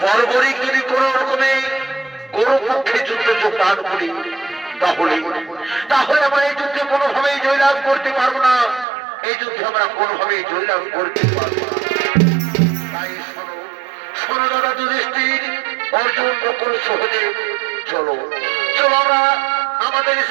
বর্বরিক যদি কোন রকমে গৌরপক্ষে যুদ্ধ যোগদান করি তাহলে আমরা এই যুদ্ধে কোনোভাবেই জয়লাভ করতে পারবো না, এই যুদ্ধে আমরা কোনোভাবেই জয়লাভ করতে পারবো না। তাই শোনো দাদা যুধিষ্ঠির, অর্জুন নকুল সহদেব, চলো আমরা আমাদের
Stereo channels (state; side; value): drops out; left; at 8.8 s